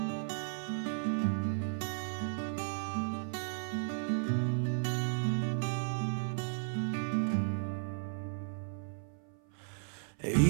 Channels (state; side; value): silent; left; 54 dB below the other